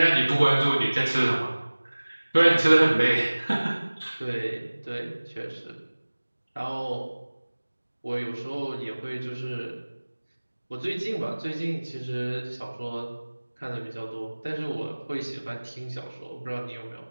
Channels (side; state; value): both; inverted; correlation -1.00